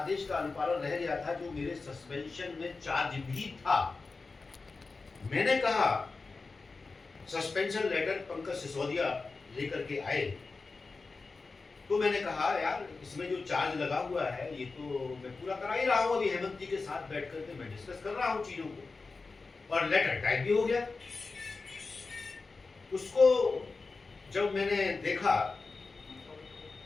का अनुपालन रह गया था जो मेरे सस्पेंशन में चार्ज भी था। मैंने कहा सस्पेंशन लेटर पंकज सिसोदिया लेकर के आए, तो मैंने कहा यार इसमें जो चार्ज लगा हुआ है ये तो मैं पूरा करा ही रहा हूं, अभी हेमंत जी के साथ बैठ करके मैं डिस्कस कर रहा हूं चीजों को, और लेटर टाइप भी हो गया। उसको जब मैंने देखा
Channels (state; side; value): quieter; right; 4.0 dB